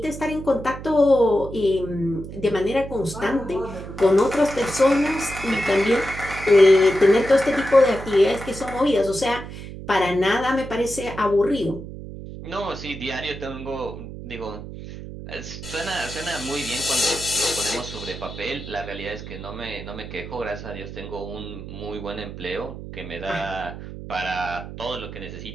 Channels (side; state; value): right; noise; hum, 11 dB below the sound